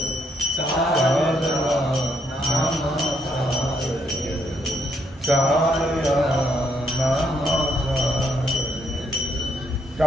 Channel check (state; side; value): normal; both; correlation 0.73